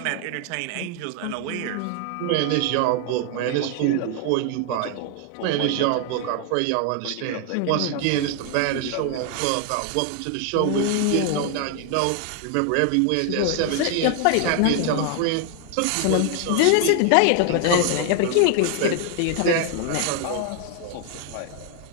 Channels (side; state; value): both; different; correlation 0.00